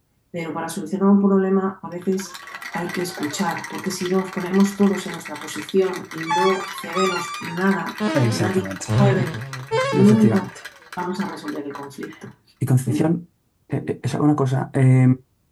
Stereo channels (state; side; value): identical; both; correlation 1.00